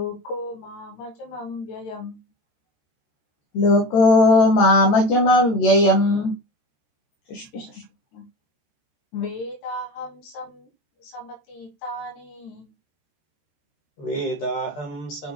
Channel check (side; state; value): right; late; 13 ms